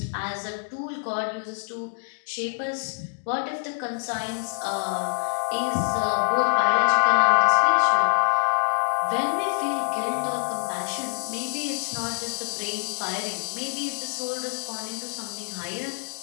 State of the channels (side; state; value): right; silent; digital silence